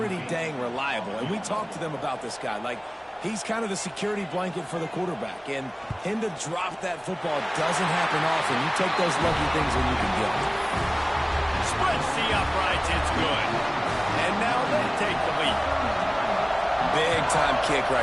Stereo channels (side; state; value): both; identical; correlation 1.00